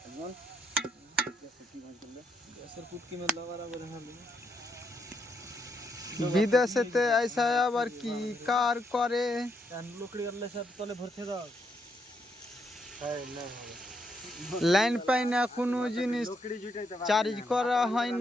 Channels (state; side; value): normal; both; correlation 0.77